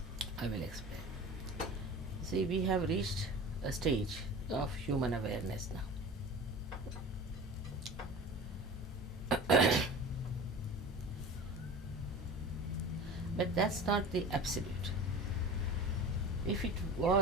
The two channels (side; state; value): both; normal; correlation 0.36